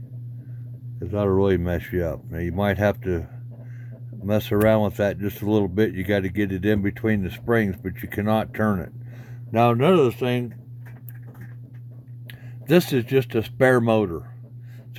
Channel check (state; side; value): identical; both; correlation 1.00